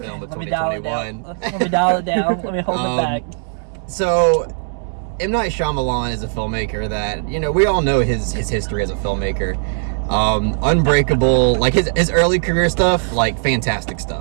of 2021. Let me dial it down. Let me hold it back. So, M. Night Shyamalan is a filmmaker that, you know, we all know his history as a filmmaker. Unbreakable, like his early career stuff, like fantastic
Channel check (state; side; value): silent; left; 67 dB below the other